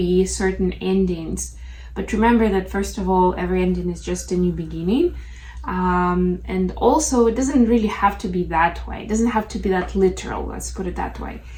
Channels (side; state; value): both; identical; correlation 1.00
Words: certain endings. But remember that first of all, every ending is just a new beginning. And also it doesn't really have to be that way. It doesn't have to be that literal, let's put it that way.